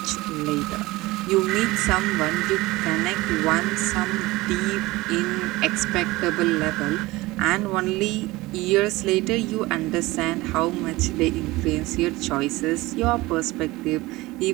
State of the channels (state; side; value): quieter; left; 20.3 dB